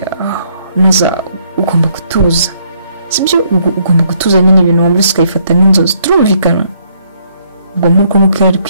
Naza ugomba gutuza, sibyo? Ugomba gutuza nyine ibintu wumvise ukayifata nk'inzozi, turumvikana? Ubwo nuko yari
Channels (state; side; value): inverted; both; correlation -0.69